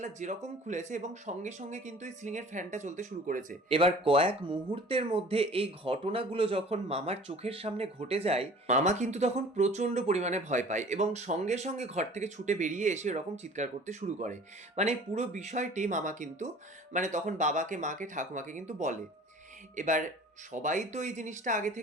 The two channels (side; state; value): both; normal; correlation 0.46